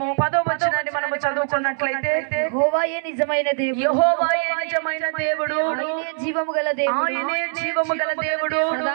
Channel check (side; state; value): left; silent; 64 dB below the other